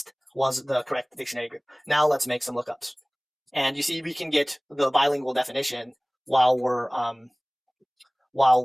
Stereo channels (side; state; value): both; identical; correlation 1.00